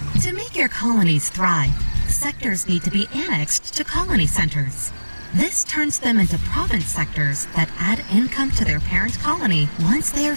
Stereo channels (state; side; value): inverted; both; correlation -1.00